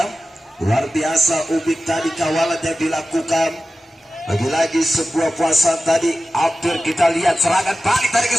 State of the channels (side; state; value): both; normal; correlation 0.95